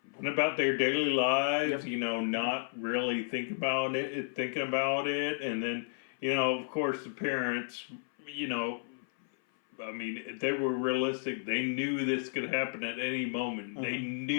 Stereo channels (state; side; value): silent; right; 56 dB below the other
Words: went about their daily lives, not really thinking about it. And then, of course, the parents, I mean, they were realistic. They knew this could happen at any moment. Mm-hmm. They